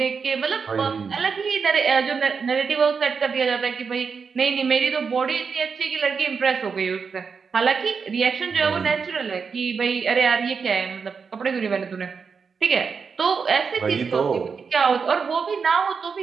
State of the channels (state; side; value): quieter; left; 5.6 dB